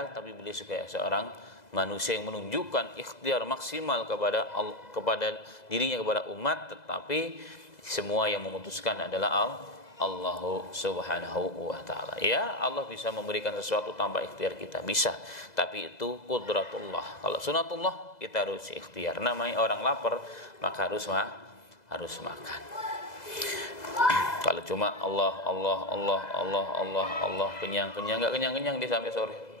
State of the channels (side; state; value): right; late; 2.0 ms